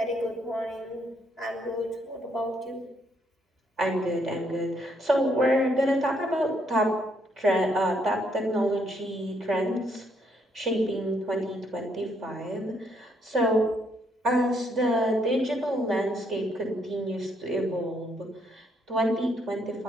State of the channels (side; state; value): both; normal; correlation 0.72